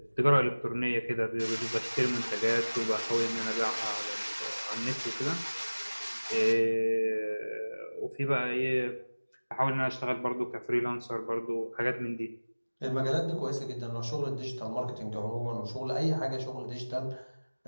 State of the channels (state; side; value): inverted; both; correlation -1.00